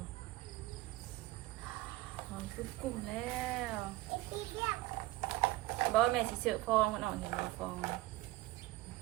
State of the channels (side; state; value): left; quieter; 17.9 dB